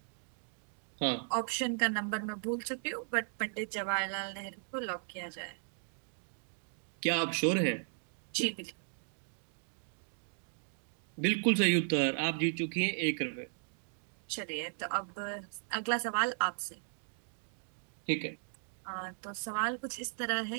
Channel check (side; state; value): left; silent; 53 dB below the other